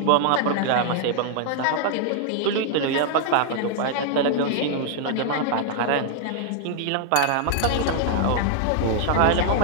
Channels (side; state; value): both; different; correlation -0.01